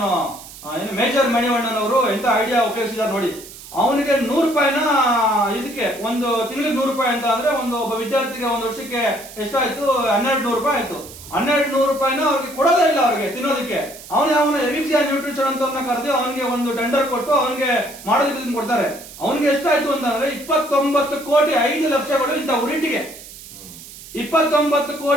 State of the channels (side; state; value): right; noise; hiss, 16 dB below the sound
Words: ಏನು ಮೇಜರ್ ಮಣಿವಣ್ಣನ್ ಅವರು ಎಂತ ಐಡಿಯಾ ಉಪಯೋಗಿಸಿದಾರೆ ನೋಡಿ. ಅವನಿಗೆ 100 ರೂಪಾಯಿನ ಇದಕ್ಕೆ ಒಂದು ತಿಂಗಳಿಗೆ 100 ರೂಪಾಯಿ ಅಂತ ಅಂದ್ರೆ ಒಬ್ಬ ವಿದ್ಯಾರ್ಥಿಗೆ ಒಂದು ವರ್ಷಕ್ಕೆ ಎಷ್ಟಾಯ್ತು, 1200 ರೂಪಾಯಿ ಆಯ್ತು. 1200 ರೂಪಾಯಿನ ಅವ್ರಿಗೆ ಕೊಡೋದೇ ಇಲ್ಲ, ಅವ್ರಿಗೆ ತಿನ್ನೋದಕ್ಕೆ. ಅವನ ಎವಿಕ್ಸಿಯಾನ್ ನ್ಯೂಟ್ರಿಷನ್ ಅಂತ ಕರೆದು ಅವನಿಗೆ ಒಂದು ಟೆಂಡರ್ ಕೊಟ್ಟು ಅವನಿಗೆ ಮಾಡೋದಕ್ಕೆ ಕೊಡ್ತಾರೆ. ಅವನಿಗೆ ಎಷ್ಟಾಯ್ತು ಅಂತಂದ್ರೆ 29 ಕೋಟಿ 5 ಲಕ್ಷಗಳು ಇಂಥ ಉರಿಟ್ಟಿಗೆ. 29